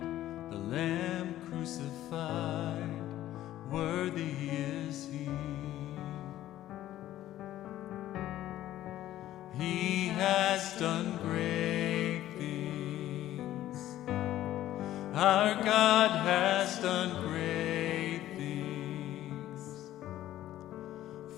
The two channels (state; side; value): quieter; right; 13.6 dB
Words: the Lamb crucified, worthy is He. He has done great things. Our God has done great things.